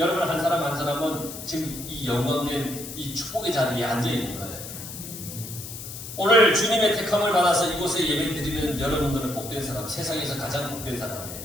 한 사람 한 사람은 지금 이 영광된 이 축복의 자리에 앉아 있는 거예요. 오늘 주님의 택함을 받아서 이곳에 예배드리는 여러분들은 복된 사람, 세상에서 가장 복된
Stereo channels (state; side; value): noise; left; hiss, 10 dB below the sound